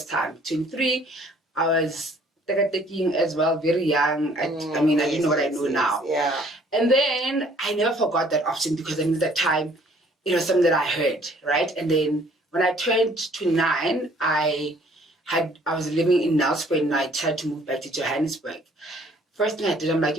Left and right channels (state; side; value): normal; both; correlation 0.59